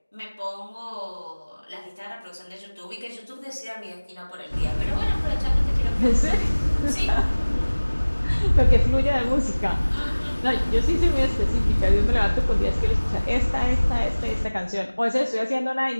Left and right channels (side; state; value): both; inverted; correlation -1.00